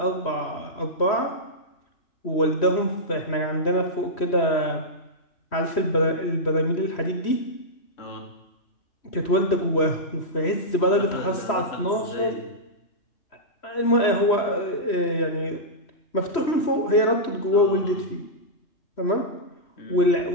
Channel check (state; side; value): late; right; 3.1 ms